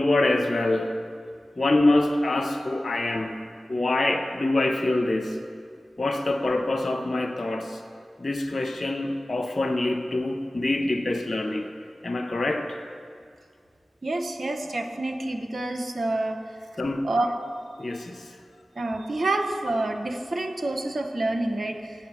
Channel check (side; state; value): both; normal; correlation 0.95